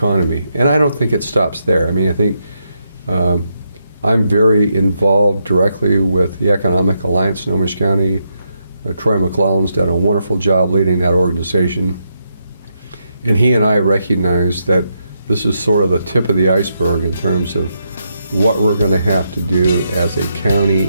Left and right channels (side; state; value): both; inverted; correlation -0.81